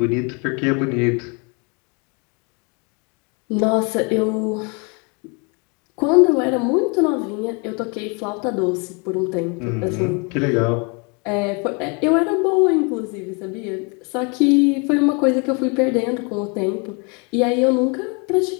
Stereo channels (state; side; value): quieter; right; 33.0 dB